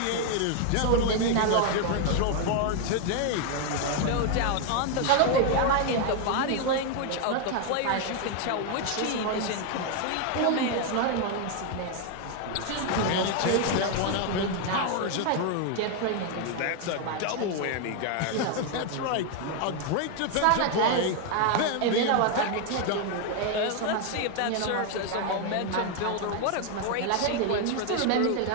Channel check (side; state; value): both; different; correlation 0.01